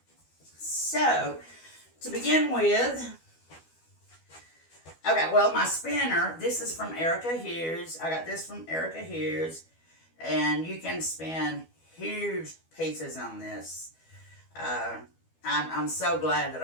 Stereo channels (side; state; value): right; late; 12 ms